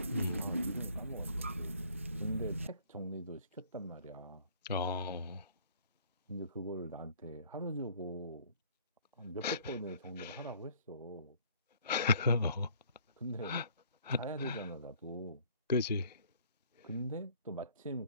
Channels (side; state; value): both; inverted; correlation -0.58